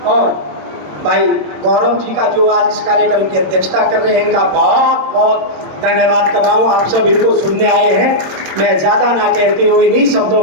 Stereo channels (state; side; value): late; left; 26 ms